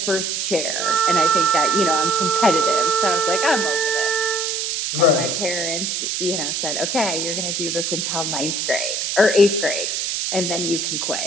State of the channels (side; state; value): right; noise; hiss, 1 dB below the sound